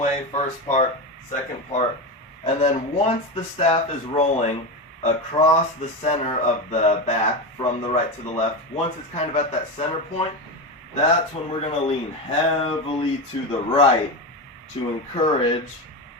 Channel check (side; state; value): both; normal; correlation 0.18